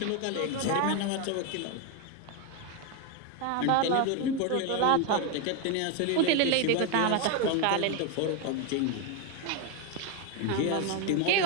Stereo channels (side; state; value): both; different; correlation 0.02